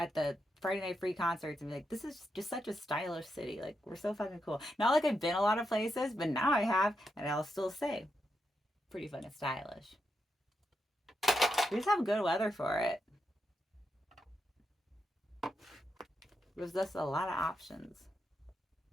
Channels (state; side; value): normal; both; correlation 0.84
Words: the Friday Night Free concerts and be like, this is just such a stylish city. Like we're so fucking cool. Not like I've been a lot of places, but now I have, and I'll still say, pretty fucking stylish. We just have good weather for it. There's just a lot of options.